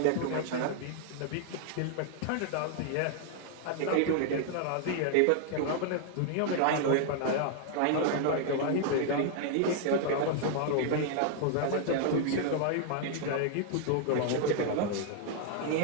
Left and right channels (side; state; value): both; different; correlation 0.00